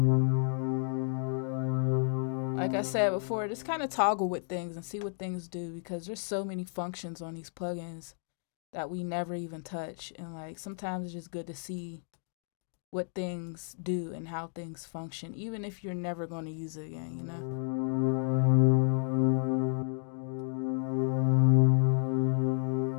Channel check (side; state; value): right; silent; 57 dB below the other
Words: Like I said before, just kind of toggle with things and see what things do, because there's so many functions on these plugins that we never even touch. And like sometimes it's just good to see what things do and how things function, even if you're never going to use it again, you know?